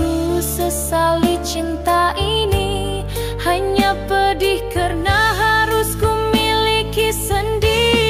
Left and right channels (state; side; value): identical; both; correlation 1.00